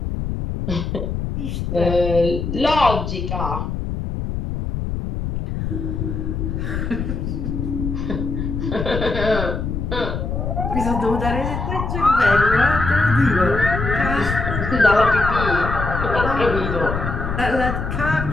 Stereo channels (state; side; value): noise; left; rumble, 3 dB below the sound